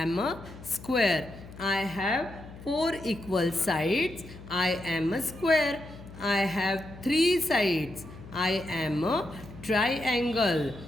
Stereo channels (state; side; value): noise; left; hum, 16 dB below the sound